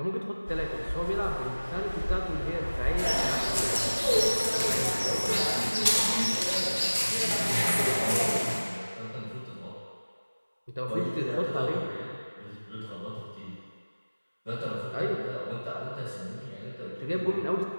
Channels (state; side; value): inverted; both; correlation -1.00